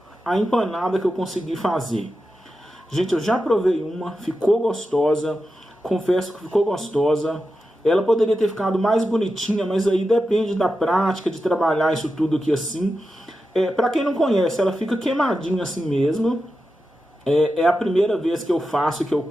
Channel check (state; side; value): normal; both; correlation 0.90